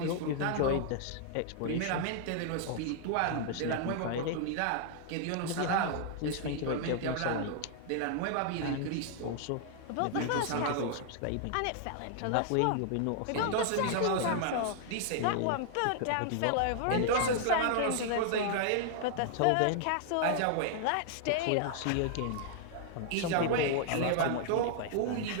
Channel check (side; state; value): both; different; correlation 0.00